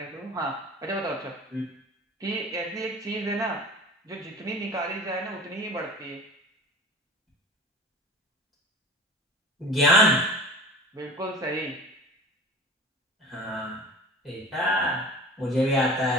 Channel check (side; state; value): both; normal; correlation 0.39